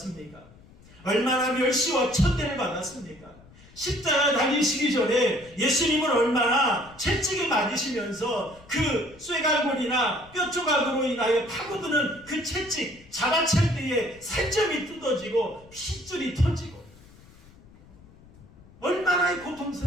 얼마나 멸시와 천대를 받았습니까? 십자가 달리시기 전에 예수님은 얼마나 채찍에 맞으시면서 그 쇠갈고리나 뼈 조각으로 인하여 파고드는 그 채찍, 자라찰 때에 살점이 뜯어지고 핏줄이 터지고 얼마나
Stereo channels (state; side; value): noise; left; rumble, 24 dB below the sound